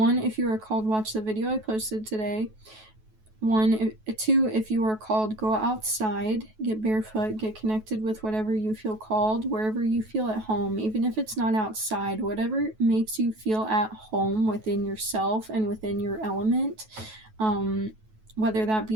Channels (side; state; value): left; late; 9.3 ms